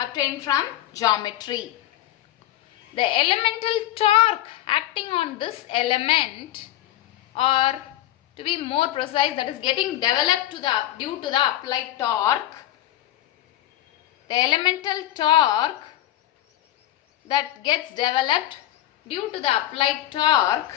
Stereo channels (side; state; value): right; quieter; 14.1 dB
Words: from geometry. The elemental torque acting on this element, or to be more precise, that is getting developed due to the applied torque, the elemental torque that gets developed due to the applied torque